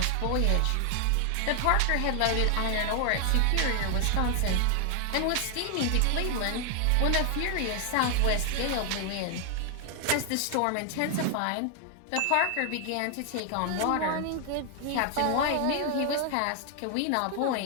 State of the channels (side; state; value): both; different; correlation 0.00